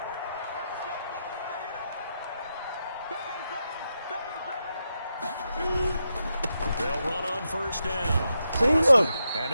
They'll run on first down. See, look,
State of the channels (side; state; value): both; inverted; correlation -0.85